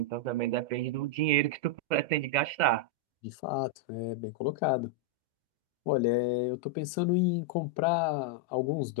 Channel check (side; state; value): left; late; 2.1 ms